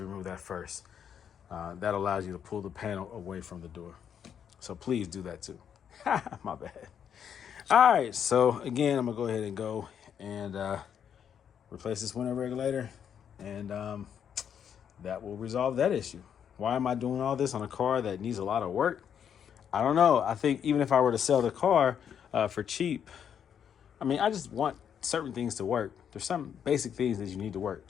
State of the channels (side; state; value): right; quieter; 8.3 dB